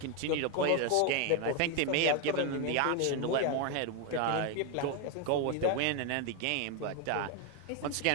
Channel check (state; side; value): different; both; correlation 0.01